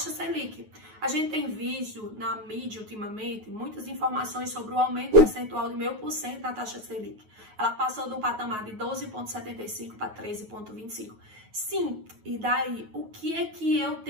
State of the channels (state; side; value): late; left; 9.4 ms